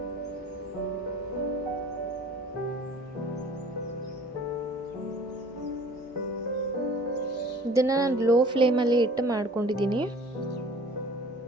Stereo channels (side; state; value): both; normal; correlation 0.48